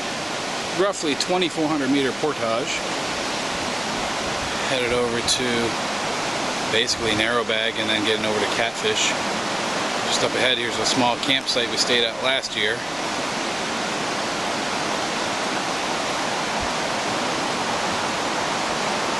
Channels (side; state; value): left; noise; rumble, 26 dB below the sound